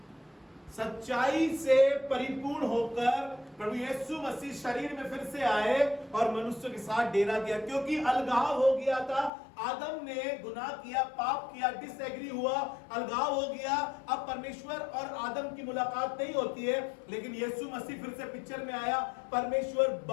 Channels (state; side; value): drops out; right; at 9.3 s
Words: सच्चाई से परिपूर्ण होकर प्रभु यीशु मसीह शरीर में फिर से आए और मनुष्य के साथ डेरा किया, क्योंकि अलगाव हो गया था। आदम ने गुनाह किया, पाप किया, डिसएग्री हुआ, अलगाव हो गया। अब परमेश्वर और आदम की मुलाकात नहीं होती है, लेकिन यीशु मसीह फिर से पिक्चर में आया। परमेश्वर